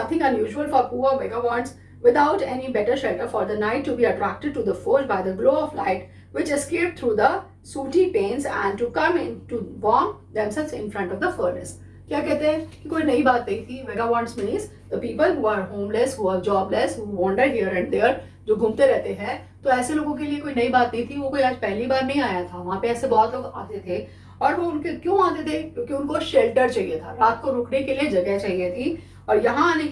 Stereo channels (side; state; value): both; identical; correlation 1.00